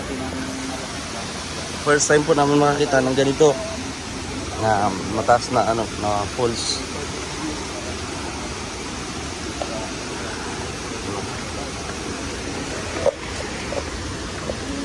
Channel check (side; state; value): both; identical; correlation 1.00